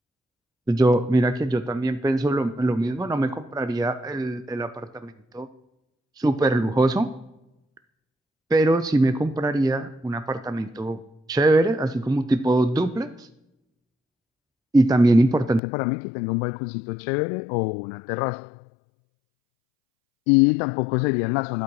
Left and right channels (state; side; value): drops out; right; at 15.6 s